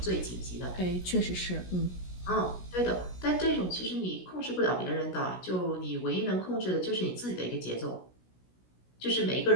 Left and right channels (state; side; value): late; right; 16 ms